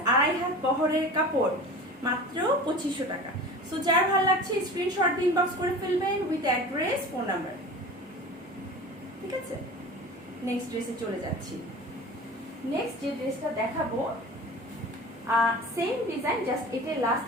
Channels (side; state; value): both; normal; correlation 0.36